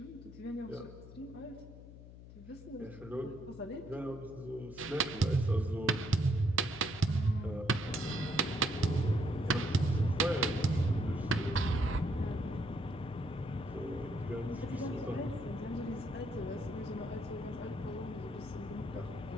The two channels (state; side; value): noise; left; hum, 16 dB below the sound